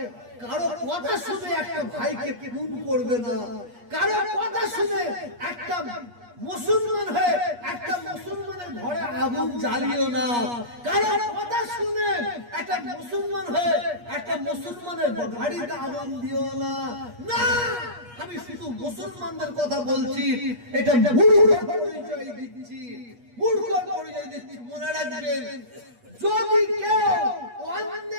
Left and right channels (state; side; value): late; left; 8.4 ms